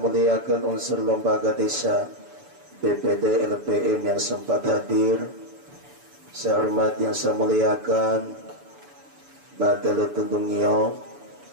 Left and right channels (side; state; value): left; late; 6.9 ms